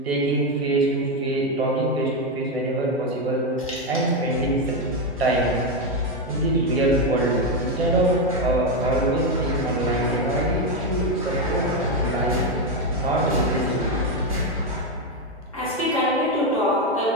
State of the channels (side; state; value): both; normal; correlation 0.08